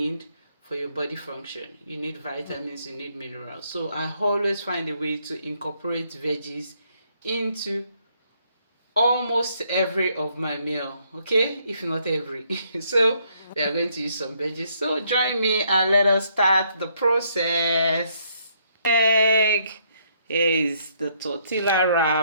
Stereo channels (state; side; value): inverted; both; correlation -0.70